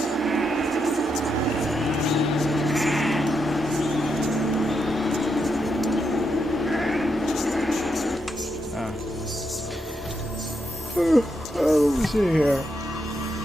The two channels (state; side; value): normal; both; correlation 0.82